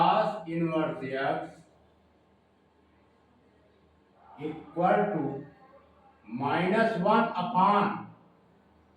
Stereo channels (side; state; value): both; identical; correlation 1.00